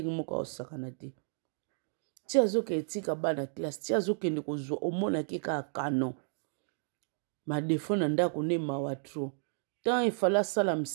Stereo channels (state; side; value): silent; left; digital silence